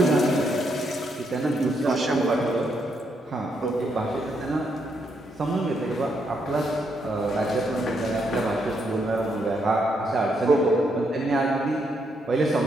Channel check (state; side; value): normal; both; correlation 0.77